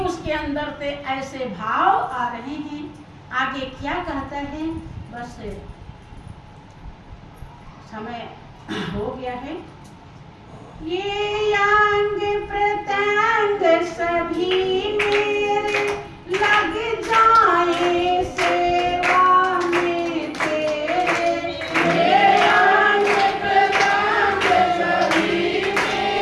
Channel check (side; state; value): both; identical; correlation 1.00